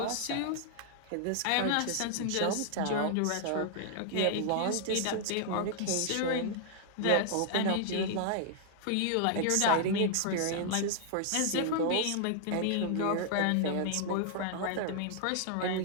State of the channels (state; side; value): different; both; correlation 0.00